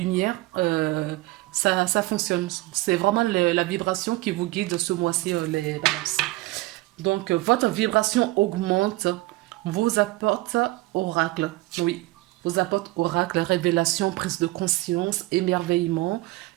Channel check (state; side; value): quieter; left; 19.7 dB